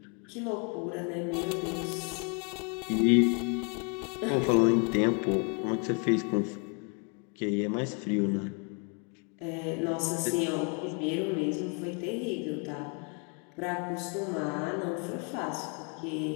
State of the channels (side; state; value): right; quieter; 35.9 dB